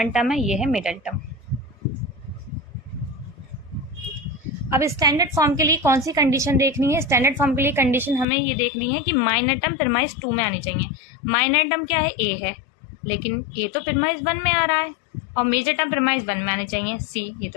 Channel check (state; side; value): drops out; right; at 8.2 s